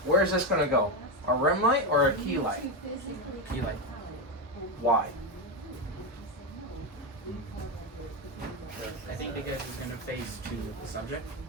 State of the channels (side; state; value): both; normal; correlation 0.11